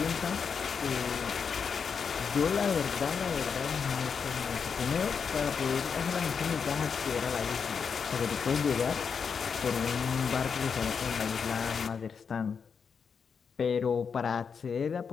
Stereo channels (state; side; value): quieter; right; 6.2 dB